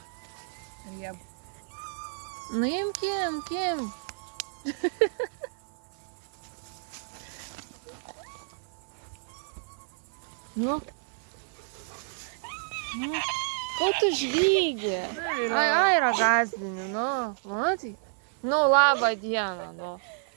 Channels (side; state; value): left; silent; 58 dB below the other